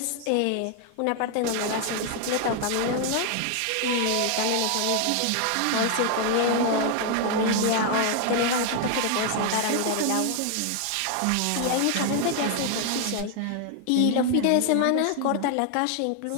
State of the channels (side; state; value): both; different; correlation 0.00